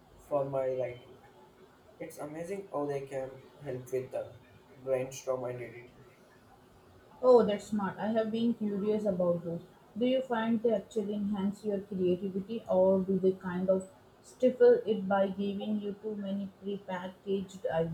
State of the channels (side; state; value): both; identical; correlation 1.00